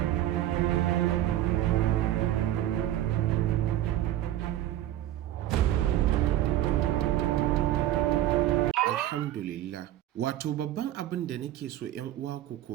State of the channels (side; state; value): left; quieter; 13.3 dB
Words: Alhamdulillah. Wato babban abin da nake so 'yan uwa ku